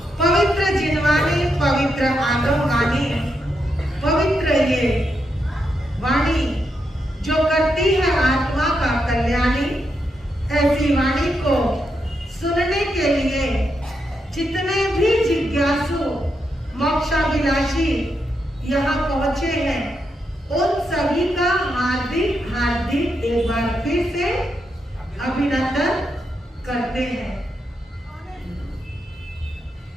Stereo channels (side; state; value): both; normal; correlation 0.83